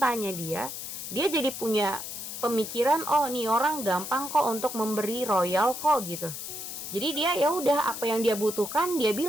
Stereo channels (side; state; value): left; noise; hiss, 8 dB below the sound